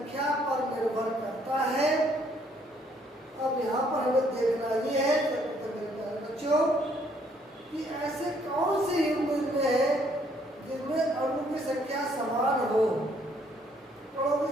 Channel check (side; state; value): both; normal; correlation 0.66